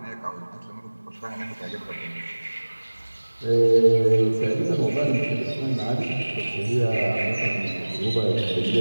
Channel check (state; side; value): inverted; both; correlation -1.00